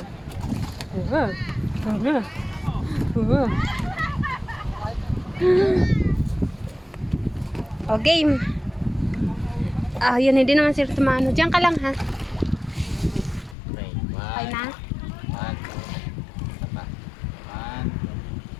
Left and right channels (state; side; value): drops out; right; at 13.6 s